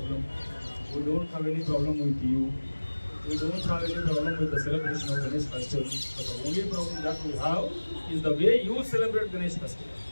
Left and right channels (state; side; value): inverted; both; correlation -1.00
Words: We don't have any problem with you. We don't have any problem with the celebration of Ganesh festival. But the only problem that we have is the way you celebrate Ganesh festival.